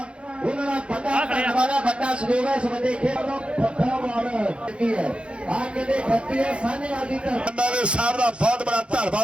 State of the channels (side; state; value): left; late; 0.058 ms